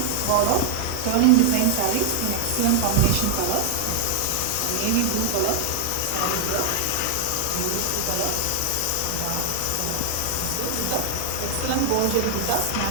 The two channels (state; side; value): different; both; correlation 0.00